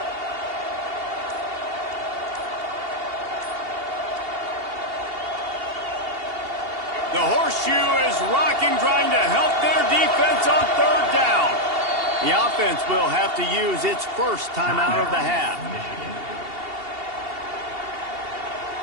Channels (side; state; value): left; late; 2.8 ms